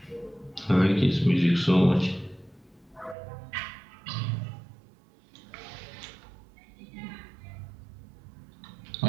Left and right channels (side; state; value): left; drops out; at 3.2 s